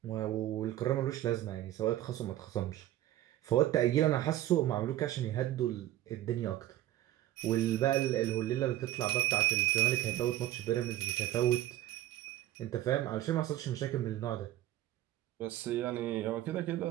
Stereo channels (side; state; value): left; quieter; 14.3 dB